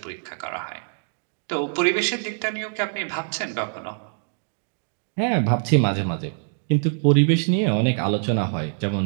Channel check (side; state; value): left; silent; digital silence